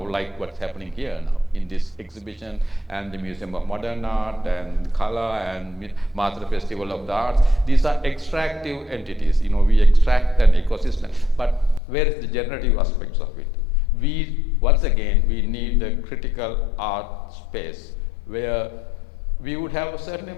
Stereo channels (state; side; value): drops out; right; at 11.8 s